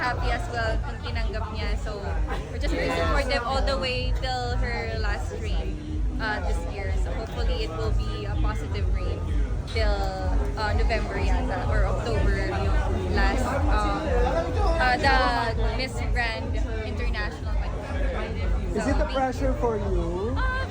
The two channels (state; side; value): identical; both; correlation 1.00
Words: as well kung tinanggap niya. So, we're just very supportive all the way till her last stream this year. So, hopefully it will be a positive read till November yata or October yung last the Miss Grand International. Is it a pressure for you?